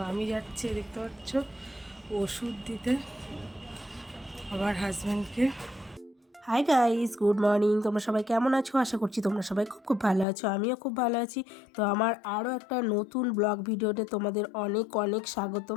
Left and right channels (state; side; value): drops out; right; at 10.2 s